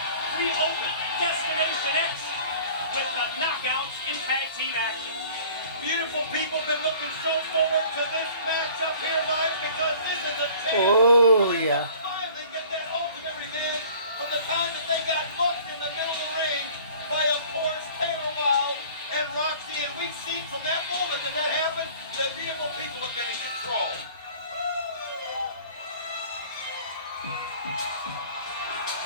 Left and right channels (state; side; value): inverted; both; correlation -0.48